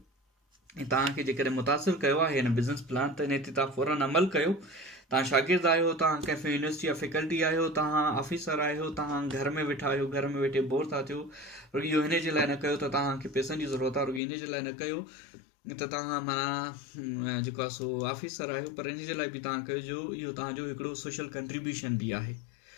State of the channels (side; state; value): right; drops out; at 14.2 s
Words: ऐं तव्हांखे जेकॾहिं मुतासिर कयो आहे हिन बिज़नेस प्लान त इन ते तव्हां फ़ौरन अमल कयो। तव्हां शागिर्द आहियो, तव्हां कंहिं यूनिवर्सिटी जा फैकल्टी आहियो, तव्हां ऑफिसर आहियो, तव्हां घर में वेठा आहियो, घर में वेठे बोर था थियो, रुॻो इहो हिन जे लाइ न कयो त तव्हांखे पैसनि जी ज़रूरत आहे, रुॻो इन जे लाइ न कयो त तव्हां माना जेको आहे सो ऑफिसर आहियो, पर इन जे लाइ बि तव्हां कजो इहो तव्हांजो हिकिड़ो सोशल कंट्रीब्यूशन बि आहे।